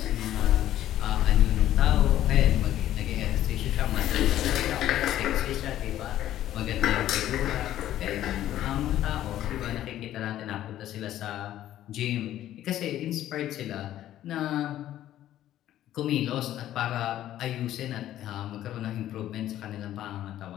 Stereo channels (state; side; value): quieter; right; 12.7 dB